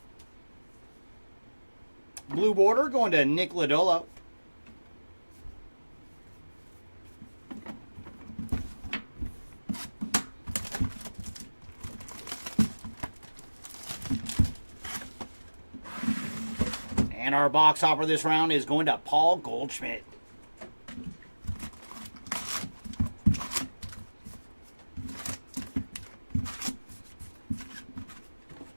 Blue border going to Nick Lodolo. And our box hopper this round is going to Paul Goldschmidt.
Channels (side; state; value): both; inverted; correlation -1.00